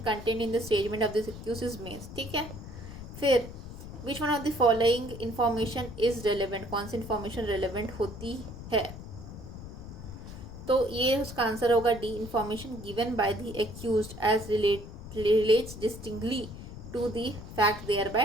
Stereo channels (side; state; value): left; noise; rumble, 12 dB below the sound